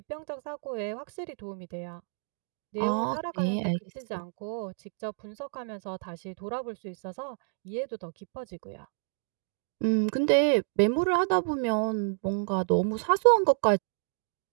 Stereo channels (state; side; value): silent; left; digital silence